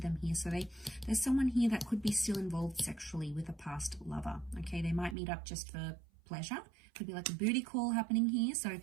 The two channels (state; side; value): drops out; left; at 5.2 s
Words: here. So there's someone here that could be still involved sexually with a past lover. Okay, they might meet up just for pleasure. Could be like a booty call happening here. So